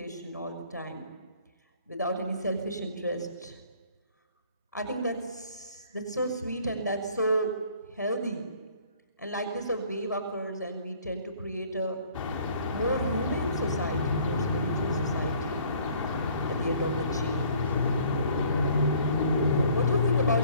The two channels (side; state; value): both; inverted; correlation -0.57